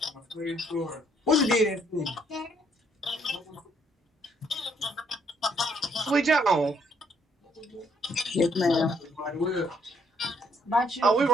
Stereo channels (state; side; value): normal; both; correlation 0.69